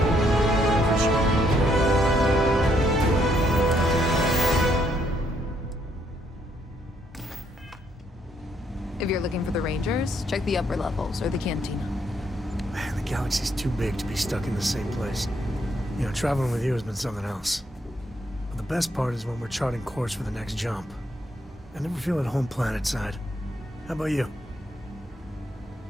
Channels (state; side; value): normal; both; correlation 0.72